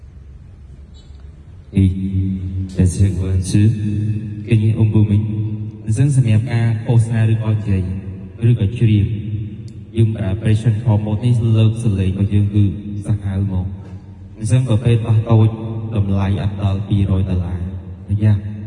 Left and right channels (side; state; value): both; identical; correlation 1.00